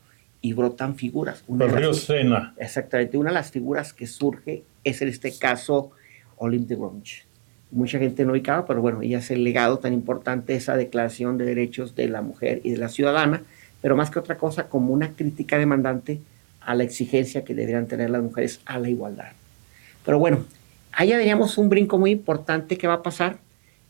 y brotan figuras. El río Sena. Exactamente. Una de las figuras que surge es en este caso Olympe de Gouges. Mucha gente no ubicaba, pero bueno, ella es el legado tan importante de esa Declaración de Derechos de la Mujer y de la Ciudadana, pero más que otra cosa como una crítica demandante a la exigencia que deberían tener las mujeres a la igualdad. Pero bueno, allá veríamos un brinco muy importante que va a pasar,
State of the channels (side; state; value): left; silent; digital silence